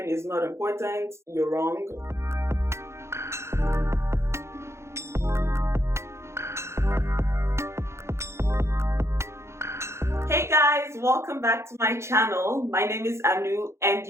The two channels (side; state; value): left; late; 0.13 ms